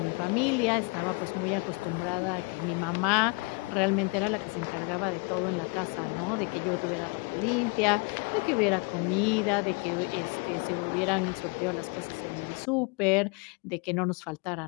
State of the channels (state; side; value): quieter; right; 29.6 dB